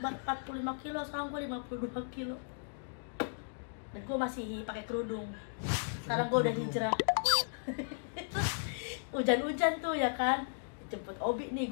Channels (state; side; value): silent; right; digital silence